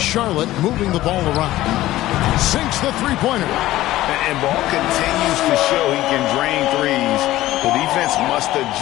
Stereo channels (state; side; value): quieter; right; 15.7 dB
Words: Charlotte moving the ball around. Sinks the three-pointer. And Ball continues to show he can drain threes. The defense must